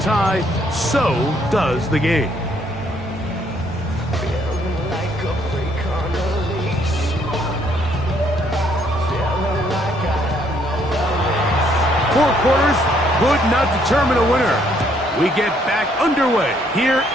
so does the game. Four quarters could not determine a winner. We get back underway here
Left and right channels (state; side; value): normal; both; correlation 0.68